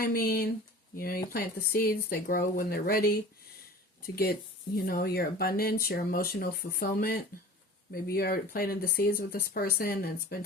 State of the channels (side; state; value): both; normal; correlation 0.40